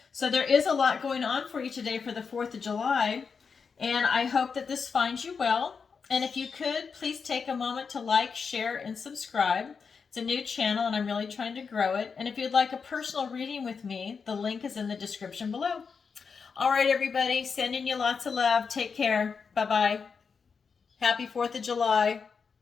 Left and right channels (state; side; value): quieter; right; 5.6 dB